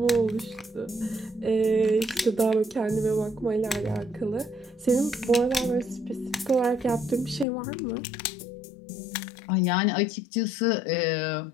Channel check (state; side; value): drops out; right; at 7.5 s